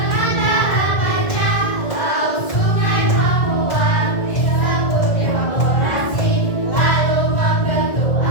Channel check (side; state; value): right; late; 1.9 ms